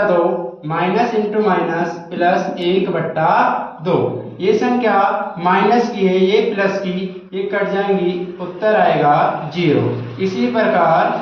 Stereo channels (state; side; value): identical; both; correlation 1.00